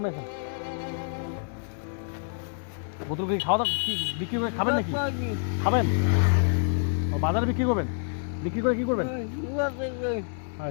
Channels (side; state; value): right; silent; digital silence